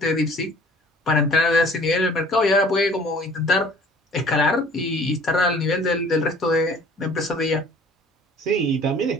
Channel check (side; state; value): both; normal; correlation 0.51